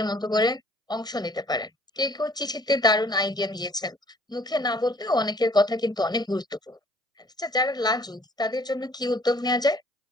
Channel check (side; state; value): both; normal; correlation 0.57